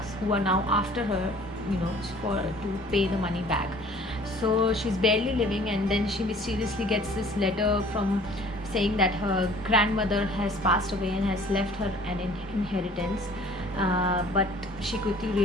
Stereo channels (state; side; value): normal; both; correlation 0.51